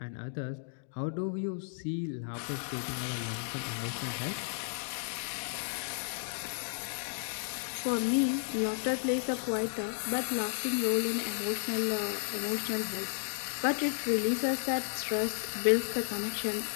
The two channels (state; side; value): silent; right; digital silence